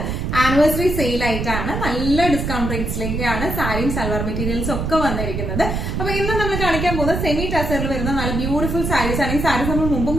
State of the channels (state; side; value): noise; right; rumble, 2 dB below the sound